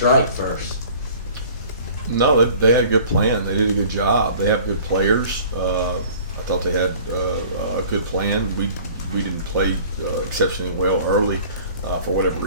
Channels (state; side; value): inverted; both; correlation -0.48